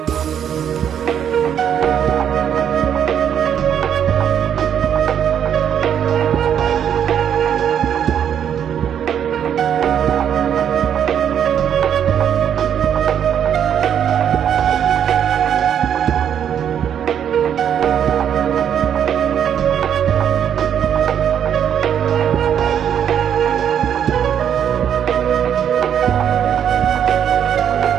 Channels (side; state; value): left; quieter; 9.0 dB